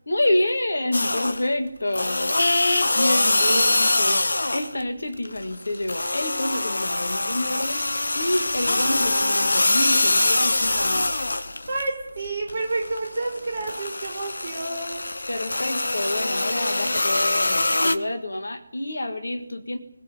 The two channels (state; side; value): inverted; both; correlation -0.97